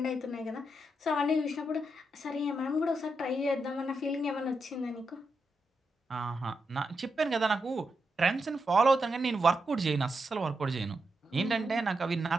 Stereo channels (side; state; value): both; normal; correlation 0.85